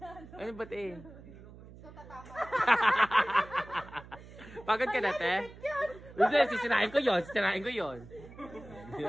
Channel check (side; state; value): right; noise; hum, 18 dB below the sound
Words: Ano ba, te? Pagod ka na, te? Hindi, sisirain ko yun. Sisirain ko yun.